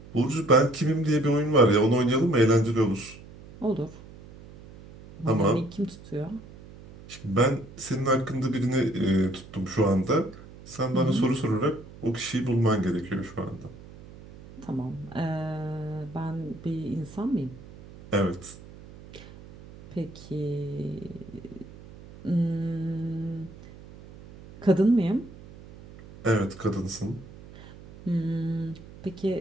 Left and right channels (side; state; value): right; noise; hum, 18 dB below the sound